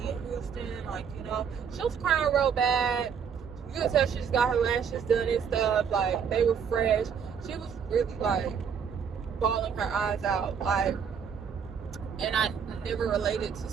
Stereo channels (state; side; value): quieter; left; 7.1 dB